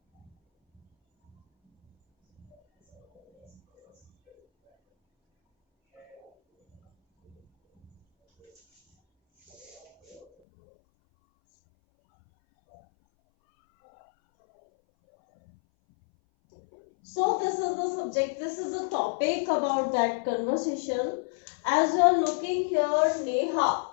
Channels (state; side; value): drops out; right; at 10.2 s